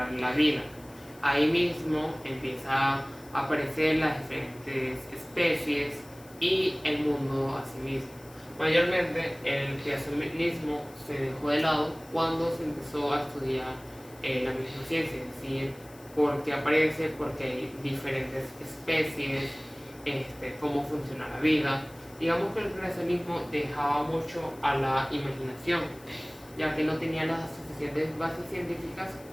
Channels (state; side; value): noise; left; hiss, 23 dB below the sound